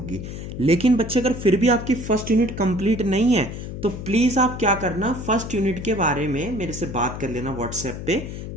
लेकिन बच्चे अगर फिर भी आपकी फर्स्ट यूनिट कंप्लीट नहीं है तो प्लीज आप क्या करना, फर्स्ट यूनिट के बारे में मेरे से बात कर लेना व्हाट्सएप पे।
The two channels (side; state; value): left; noise; hum, 8 dB below the sound